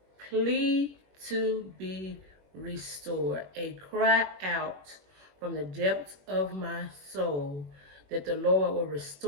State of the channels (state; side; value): late; left; 21 ms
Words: plea to be restored. A cry out from the depths of my soul that the Lord will